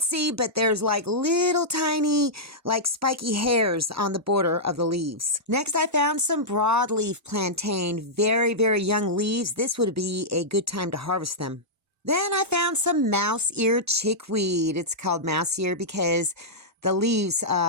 see, but there's like little tiny, like spiky hairs on the border of the leaves. Next, I found some broadleaf plantain, very, very young leaves. This would be a good time to harvest them. Then I found some mouse-ear chickweed. It's called mouse-ear because the leaves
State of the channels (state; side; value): normal; both; correlation -0.10